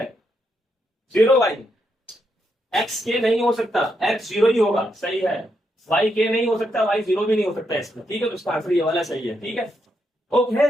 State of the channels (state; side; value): normal; both; correlation 0.80